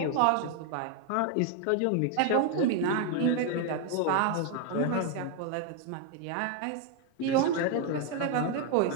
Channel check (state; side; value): different; both; correlation 0.01